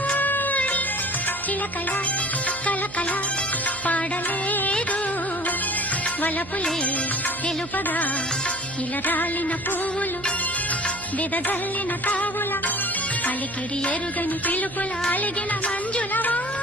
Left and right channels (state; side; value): noise; right; hum, 16 dB below the sound